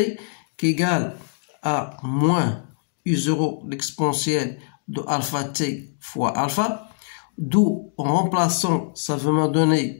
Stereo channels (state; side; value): silent; right; digital silence